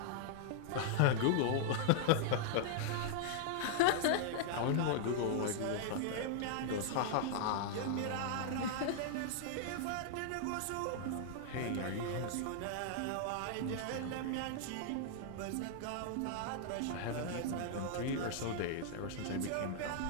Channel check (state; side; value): different; both; correlation -0.01